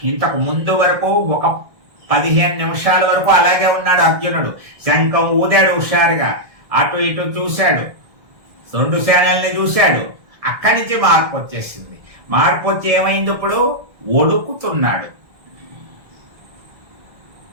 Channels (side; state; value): left; late; 1.7 ms